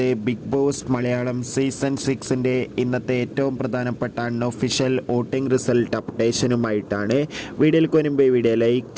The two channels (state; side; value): identical; both; correlation 1.00